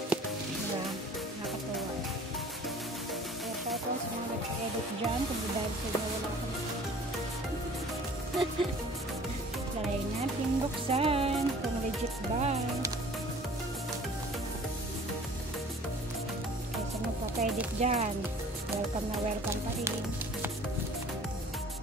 Diba? Nakatuwa. Kaya kahit lang sa mga nagpa-edit dyan, kung dahil sa inyo wala akong try natin buksan kung legit ba. Kaya sa magpa-edit dyan, welcome na welcome pa rin.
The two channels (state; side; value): normal; both; correlation 0.49